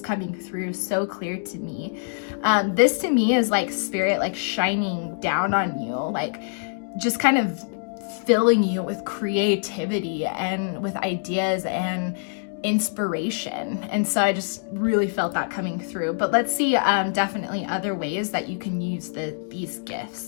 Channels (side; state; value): right; silent; digital silence